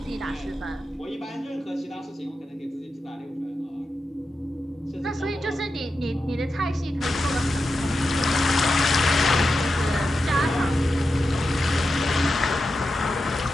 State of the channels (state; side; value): normal; both; correlation 0.89